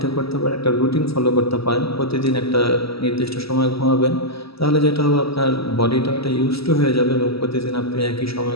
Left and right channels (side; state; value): right; late; 0.76 ms